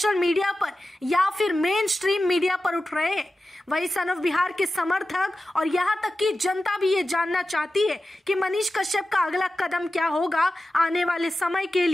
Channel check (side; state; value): both; normal; correlation 0.93